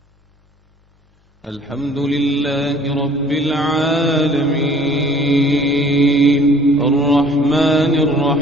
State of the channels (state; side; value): normal; both; correlation 0.54